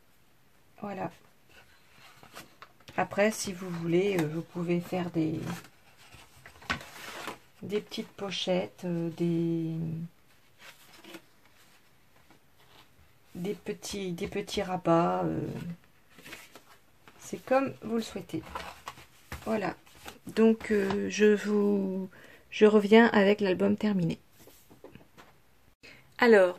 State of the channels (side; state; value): both; identical; correlation 1.00